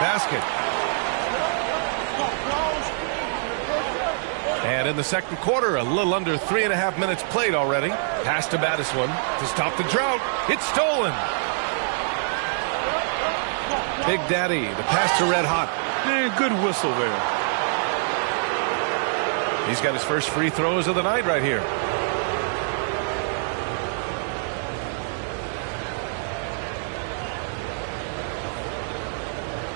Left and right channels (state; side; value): silent; left; digital silence